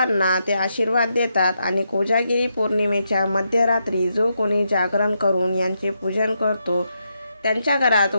ते आशीर्वाद देतात आणि कोजागिरी पौर्णिमेच्या मध्यरात्री जो कोणी जागरण करून यांचे पूजन करतो, त्यांच्या घरात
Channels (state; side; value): inverted; both; correlation -0.82